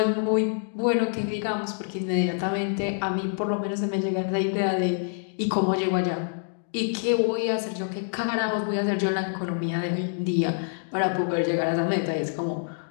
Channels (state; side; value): silent; right; digital silence